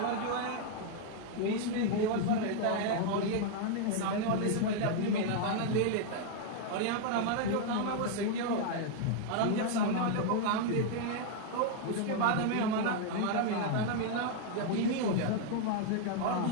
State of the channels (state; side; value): different; both; correlation 0.00